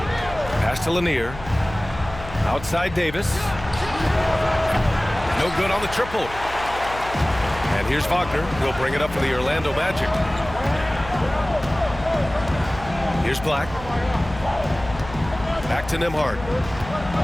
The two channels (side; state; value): left; noise; hum, 13 dB below the sound